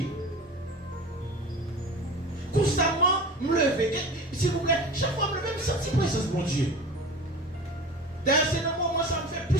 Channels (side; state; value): both; normal; correlation 0.35